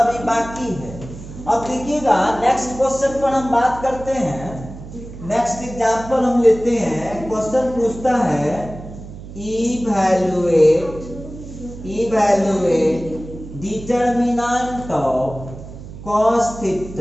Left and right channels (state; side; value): noise; right; hum, 14 dB below the sound